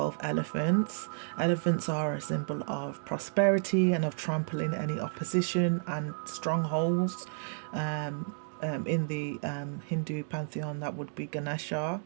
elephants. Elephants are a symbol of prosperity and of trampling any opposition and strongholds. In the Hindu pantheon, that would be Ganesha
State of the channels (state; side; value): silent; left; digital silence